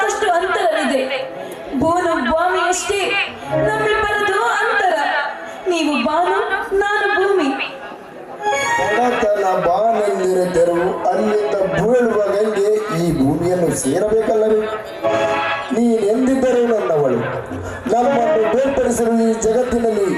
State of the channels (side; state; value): both; identical; correlation 1.00